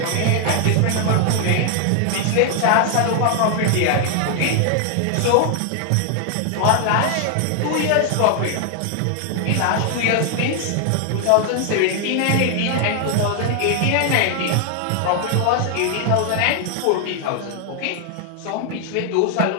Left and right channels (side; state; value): both; different; correlation 0.00